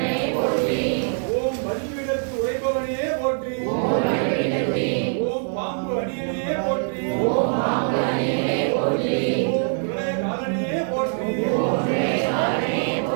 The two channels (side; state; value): left; silent; 59 dB below the other